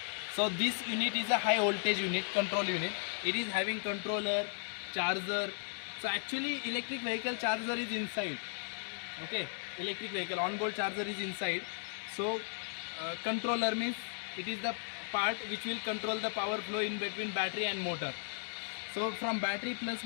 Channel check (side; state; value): right; silent; digital silence